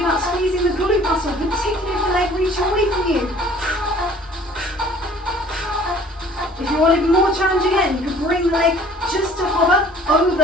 about squeezing the glute muscle, particularly if the leg reaches away from you. If you want it more challenging again, you can bring the leg just to hover over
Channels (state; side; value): normal; both; correlation 0.52